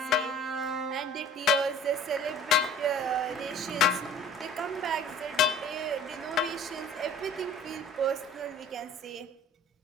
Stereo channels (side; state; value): both; normal; correlation 0.48